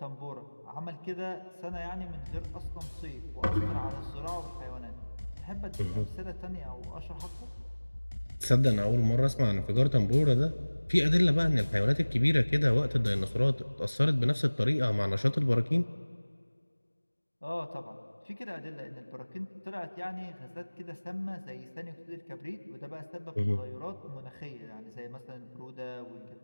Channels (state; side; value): inverted; both; correlation -1.00